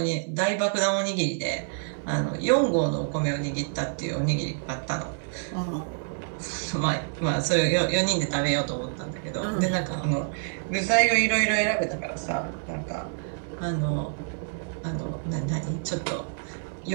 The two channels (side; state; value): left; silent; 59 dB below the other